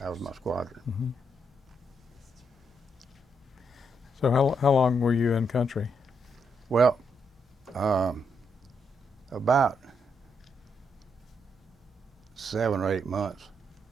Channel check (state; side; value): normal; both; correlation 0.78